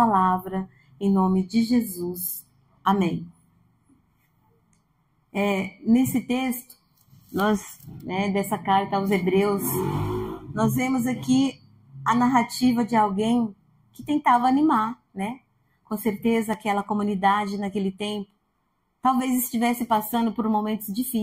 em nome de Jesus. Amém. Nesse texto, dessa carta aos Hebreus, nós vemos aqui a narrativa de alguém que tentava animar, né? Com certeza aquela comunidade naquele tempo talvez estivesse passando por momentos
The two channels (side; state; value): both; identical; correlation 1.00